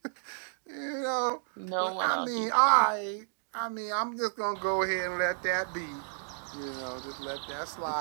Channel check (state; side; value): silent; left; digital silence